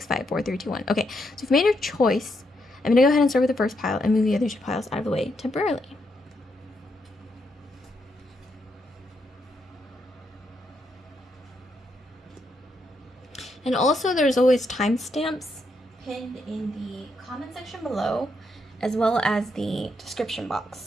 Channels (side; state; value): both; normal; correlation 0.79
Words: 5, 4, 3, 2, 1. Okay, so if you've made your choice, I'm going to go ahead and start with the first pile and move the other 2 piles out of the way temporarily. And also there's always timestamps pinned in the comment section below, as well as the description box.